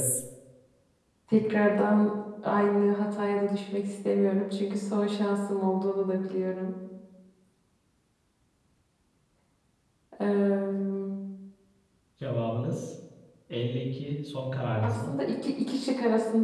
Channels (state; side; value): identical; both; correlation 1.00